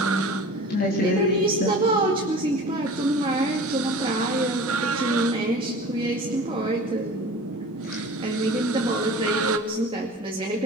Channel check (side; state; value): both; normal; correlation 0.40